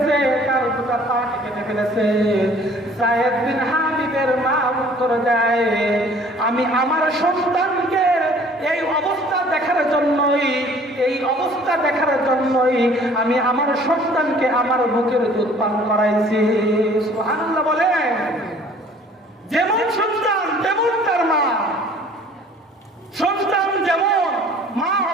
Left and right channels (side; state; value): both; normal; correlation 0.53